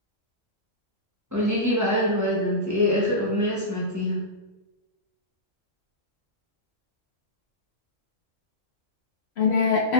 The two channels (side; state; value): both; normal; correlation -0.17